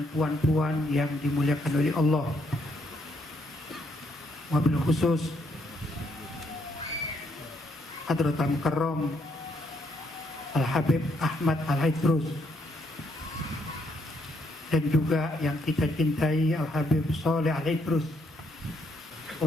puan-puan yang dimuliakan oleh Allah, wabil khusus Hadratul Mukarram Al-Habib Ahmad Al-Idrus, dan juga yang kita cintai Al-Habib Saleh Al-Idrus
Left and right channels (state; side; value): normal; both; correlation 0.73